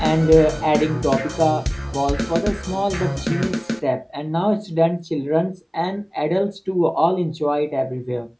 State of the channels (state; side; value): identical; both; correlation 1.00